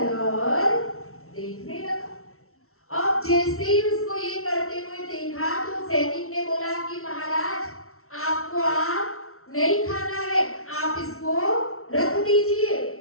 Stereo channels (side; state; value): right; late; 0.63 ms